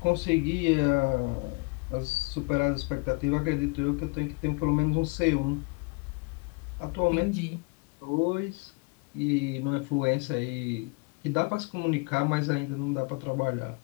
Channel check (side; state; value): right; quieter; 30.2 dB